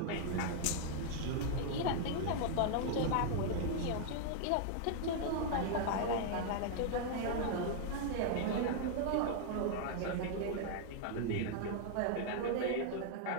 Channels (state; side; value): different; both; correlation 0.00